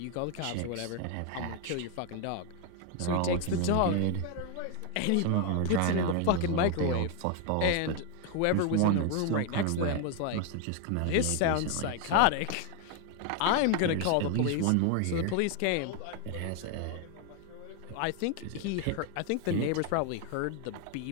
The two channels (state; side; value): different; both; correlation 0.01